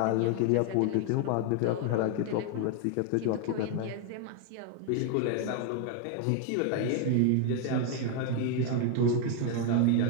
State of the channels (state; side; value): different; both; correlation 0.01